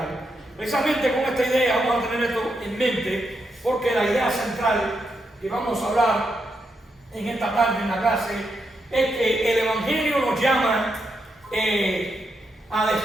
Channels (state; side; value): normal; both; correlation 0.82